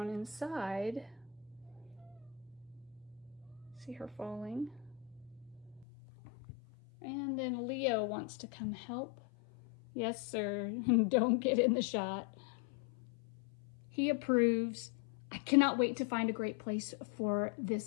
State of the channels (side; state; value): right; drops out; at 5.9 s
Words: inside. See her falling. And then Leo wants to come help. Yes, sir. Don't get in the shot. He approves. I cannot wait to find a great place for